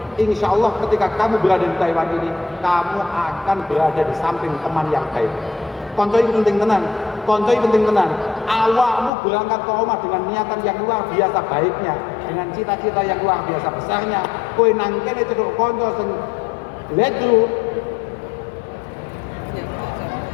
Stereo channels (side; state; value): right; drops out; at 9.1 s